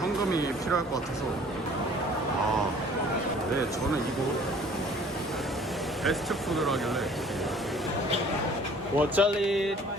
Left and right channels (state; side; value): normal; both; correlation 0.53